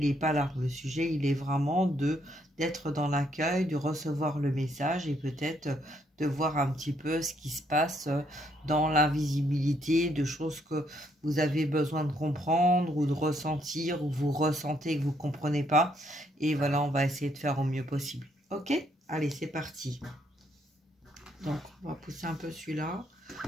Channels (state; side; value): normal; both; correlation 0.71